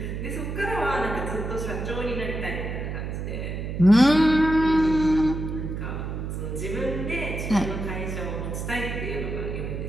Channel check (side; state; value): right; noise; hum, 4 dB below the sound